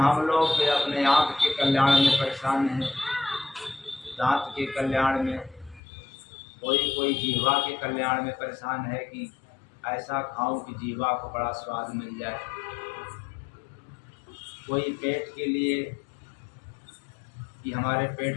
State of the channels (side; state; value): right; drops out; at 5.8 s